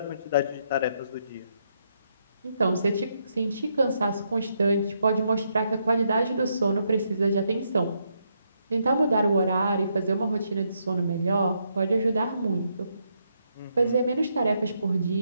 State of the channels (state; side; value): inverted; both; correlation -0.78